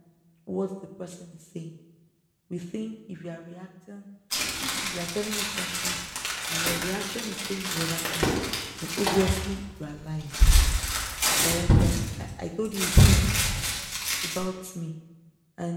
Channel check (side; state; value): both; identical; correlation 1.00